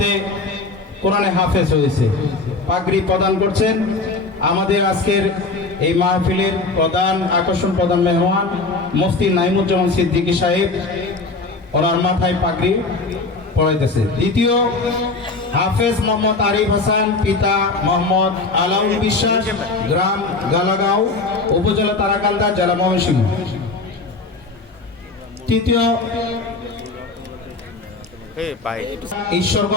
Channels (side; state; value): right; quieter; 3.7 dB